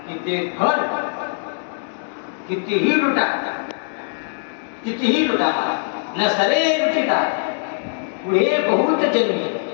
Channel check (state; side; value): silent; right; digital silence